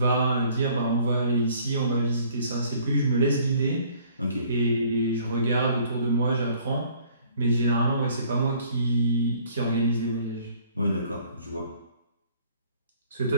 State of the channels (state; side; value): inverted; both; correlation -0.58